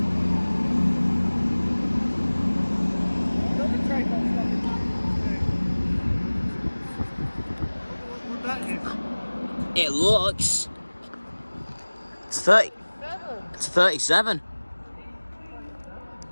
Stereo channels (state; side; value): inverted; both; correlation -1.00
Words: It looks. It's 30. It's 37.